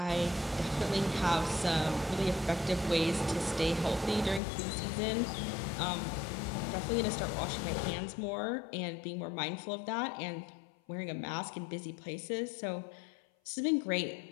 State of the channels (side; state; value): right; drops out; at 4.4 s